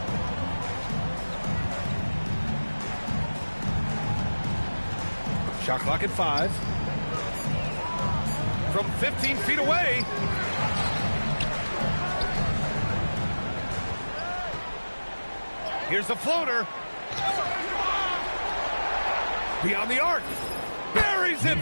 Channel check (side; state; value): both; inverted; correlation -1.00